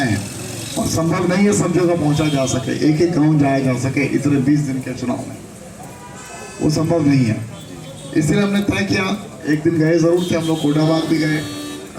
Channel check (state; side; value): identical; both; correlation 1.00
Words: हैं और संभव नहीं है सब जगह पहुंचा जा सके, एक एक गांव जाया जा सके इतने 20 दिन के चुनाव में, वो संभव नहीं है। इसलिए हमने तय किया, एक दिन गए जरूर थे हम लोग, कोटाबाग भी गए,